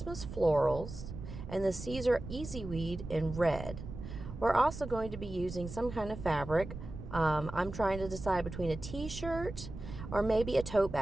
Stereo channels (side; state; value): right; noise; rumble, 10 dB below the sound